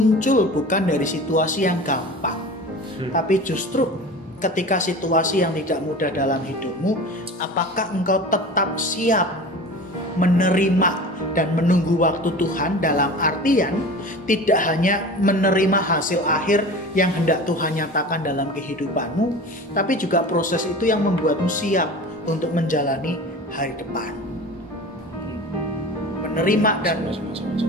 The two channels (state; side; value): normal; both; correlation 0.36